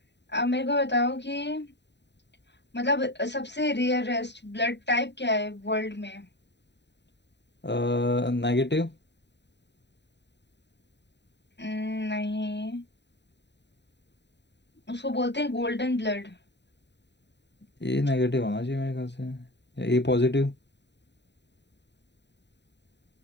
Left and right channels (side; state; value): right; late; 0.50 ms